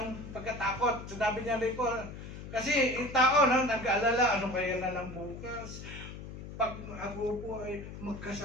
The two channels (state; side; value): noise; left; hum, 11 dB below the sound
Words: pagkatakot. Sinabi niya rin po, kasi yung tao nag-aalala, ano kaya na lang bukas? Pag ako po ay